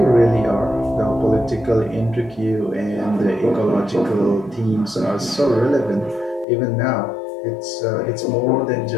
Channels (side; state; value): right; drops out; at 6.5 s